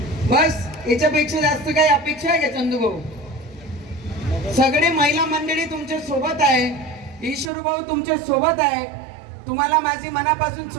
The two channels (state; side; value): drops out; left; at 7.5 s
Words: बस याच्यापेक्षा जास्त काही अपेक्षा आहे का चंदू भाऊ? सगळे महिला मंडळी तुमच्या सोबत आहे, ईश्वर भाऊ तुमच्या सोबत आहे. तुम्हाला माझी मनापासून